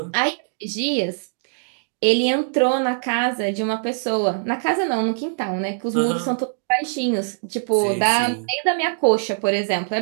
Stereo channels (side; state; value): left; silent; digital silence